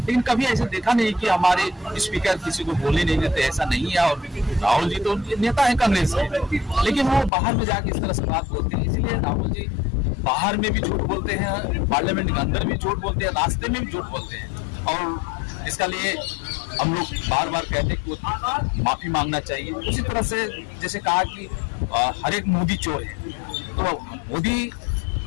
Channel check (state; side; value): drops out; right; at 7.3 s